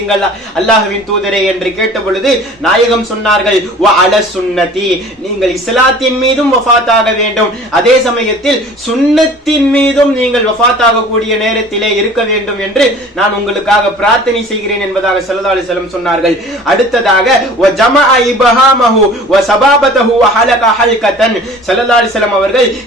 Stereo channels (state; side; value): normal; both; correlation 0.46